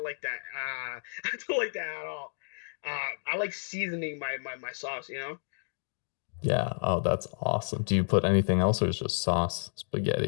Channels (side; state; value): right; silent; digital silence